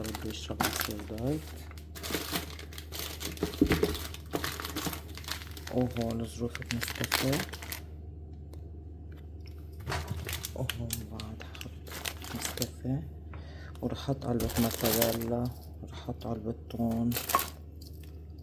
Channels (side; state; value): both; identical; correlation 1.00